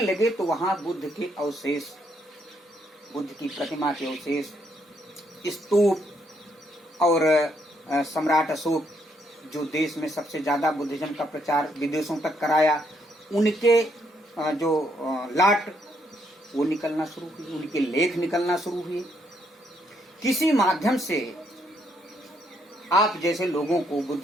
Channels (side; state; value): both; normal; correlation 0.73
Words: लगे तो वहां बुद्ध के अवशेष, बुद्ध की प्रतिमा के अवशेष, स्तूप और सम्राट अशोक जो देश में सबसे ज्यादा बुद्धिज्म का प्रचार विदेशों तक कराया, उनके जो लाट वो निकलना शुरू हुई, उनके लेख निकलना शुरू हुए। किसी माध्यम से आप जैसे लोगों को,